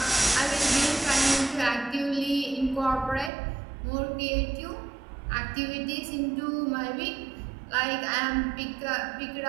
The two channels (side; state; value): left; drops out; at 3.3 s